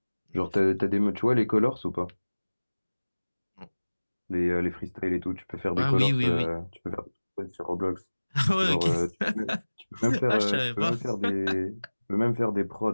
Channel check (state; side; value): inverted; both; correlation -1.00